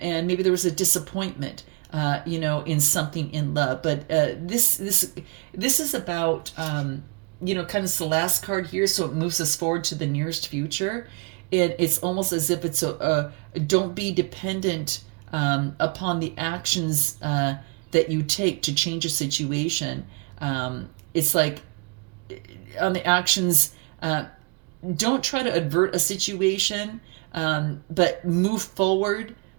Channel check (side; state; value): left; quieter; 32.2 dB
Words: maybe there was a disappointment, in something in love. But this is about kind of the last card here, so it moves us forward to the nearest future. And it's almost as if it's don't be dependent upon the actions that you take to change a situation. It's like on the actions, don't try to avert a situation, but move forward